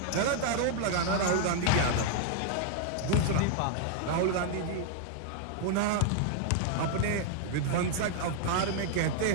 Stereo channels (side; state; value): both; different; correlation 0.00